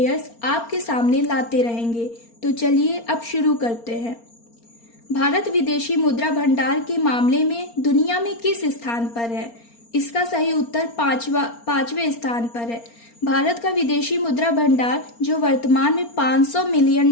आपके सामने लाते रहेंगे। तो चलिए अब शुरू करते हैं। भारत विदेशी मुद्रा भंडार के मामले में दुनिया में किस स्थान पर है? इसका सही उत्तर पांचवें स्थान पर है। भारत का विदेशी मुद्रा भंडार, जो वर्तमान में 500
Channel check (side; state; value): right; late; 4.3 ms